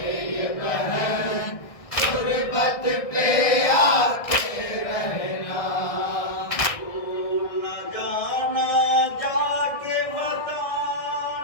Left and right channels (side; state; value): right; late; 1.6 ms